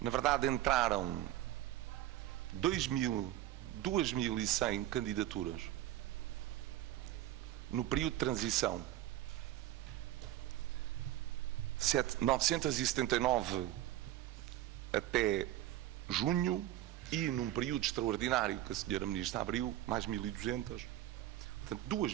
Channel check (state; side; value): quieter; left; 14.0 dB